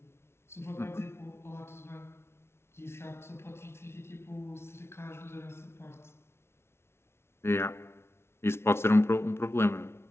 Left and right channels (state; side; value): late; right; 0.12 ms